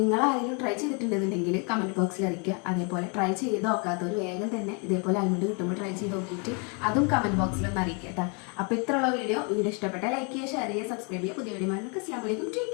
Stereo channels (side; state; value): right; quieter; 35.1 dB